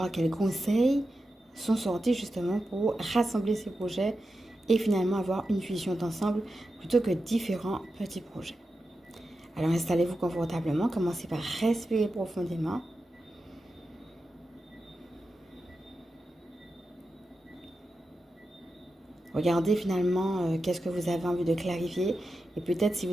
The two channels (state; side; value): normal; both; correlation 0.90